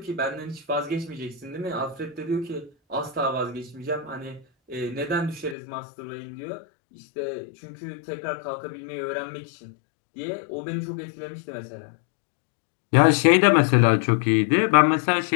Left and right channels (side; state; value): right; drops out; at 5.6 s